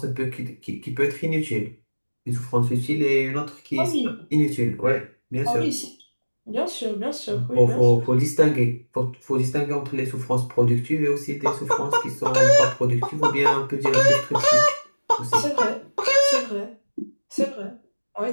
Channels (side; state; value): both; inverted; correlation -1.00